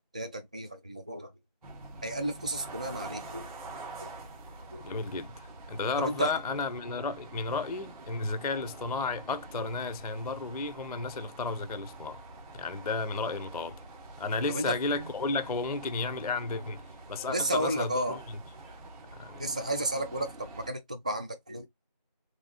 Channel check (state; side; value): inverted; both; correlation -0.32